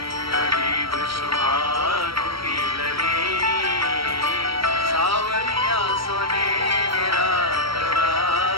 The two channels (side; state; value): left; late; 0.75 ms